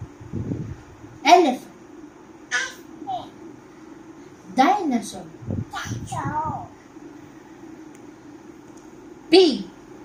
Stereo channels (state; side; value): identical; both; correlation 1.00